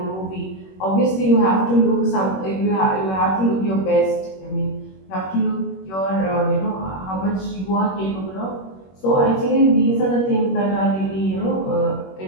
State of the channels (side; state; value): right; late; 21 ms